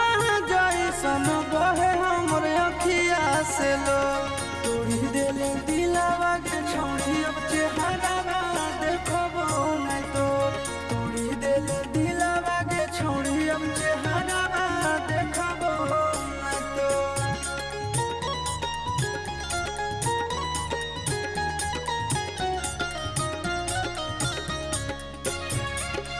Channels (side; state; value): both; identical; correlation 1.00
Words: जैसन बहे हमर अखिया से लो। तोड़ी दिले दिलावा के छोड़ी अब चेहरावा देखबो नहीं तो। तोड़ी दिले दिलावा के छोड़ी अब चेहरावा देखबो नहीं तो।